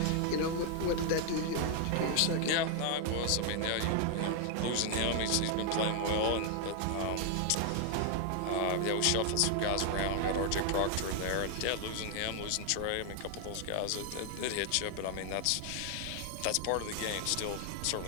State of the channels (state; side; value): different; both; correlation 0.00